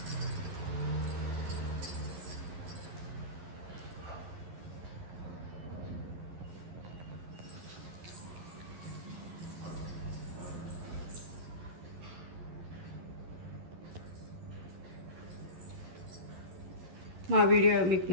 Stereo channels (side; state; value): left; late; 11 ms